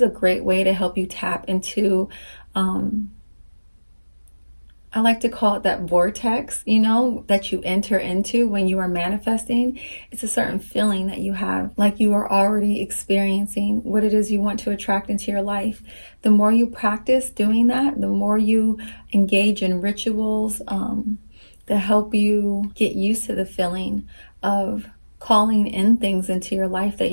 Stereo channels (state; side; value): inverted; both; correlation -1.00